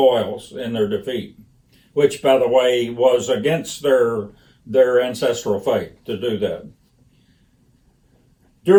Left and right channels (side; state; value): both; identical; correlation 1.00